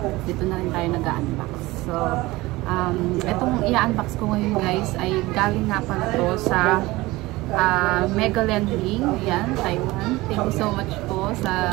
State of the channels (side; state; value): left; quieter; 20.1 dB